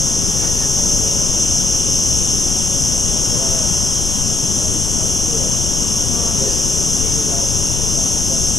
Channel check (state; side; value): noise; left; rumble, 3 dB below the sound